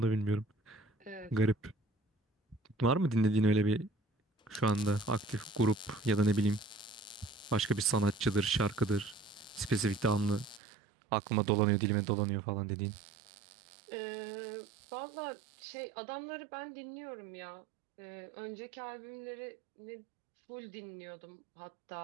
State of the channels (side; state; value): left; drops out; at 10.6 s